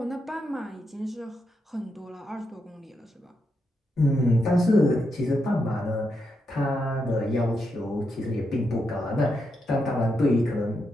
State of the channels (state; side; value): normal; both; correlation 0.83